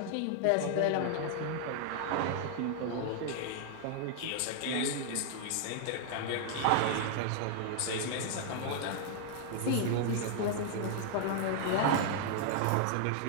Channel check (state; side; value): different; both; correlation 0.00